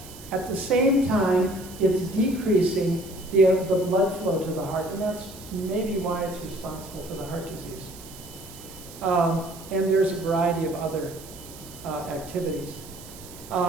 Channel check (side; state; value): right; noise; hiss, 17 dB below the sound